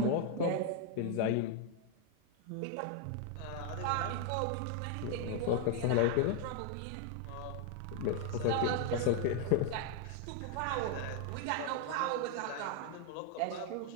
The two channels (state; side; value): different; both; correlation 0.00